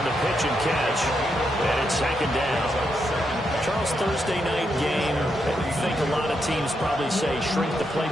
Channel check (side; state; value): both; normal; correlation 0.81